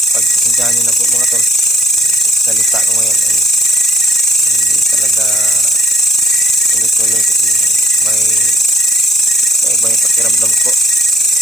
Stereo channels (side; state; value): both; normal; correlation 0.59